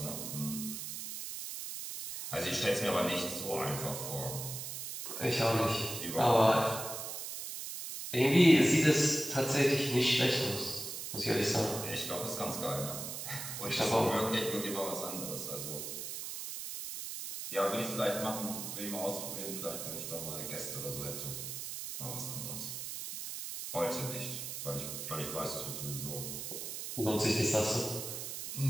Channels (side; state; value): right; noise; hiss, 6 dB below the sound